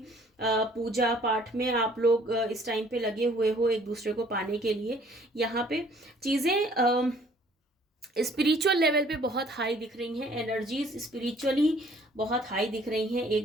पूजा पाठ में आप लोग इस टाइम पे लगे हुए हो एक दूसरे को पाने के लिए। यहाँ पे चीज़ें स्पिरिचुअल लेवल पे बहुत हाई दिख रही हैं, एनर्जीज स्पिरिचुअली बहुत हाई दिख रही हैं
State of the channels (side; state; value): both; normal; correlation 0.58